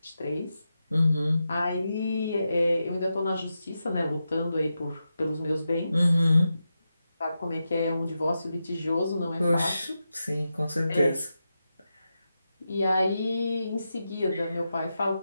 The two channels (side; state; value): both; inverted; correlation -0.89